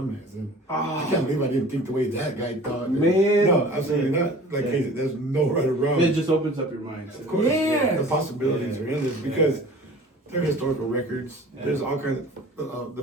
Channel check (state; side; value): normal; both; correlation 0.44